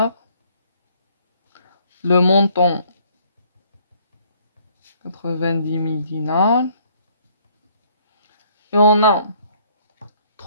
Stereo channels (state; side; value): inverted; both; correlation -0.63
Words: Le montant 90 000 dinars. Et on a